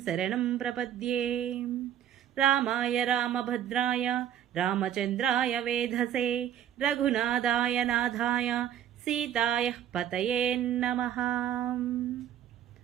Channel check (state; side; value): quieter; left; 10.4 dB